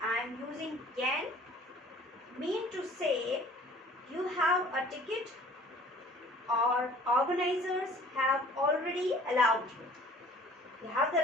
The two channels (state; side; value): normal; both; correlation 0.51